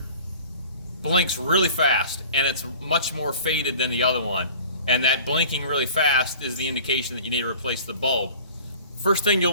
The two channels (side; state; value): both; inverted; correlation -0.45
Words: blinks really fast and it's much more faded than the other one. And that blinking really fast is the indication that you need to replace the bulb. First thing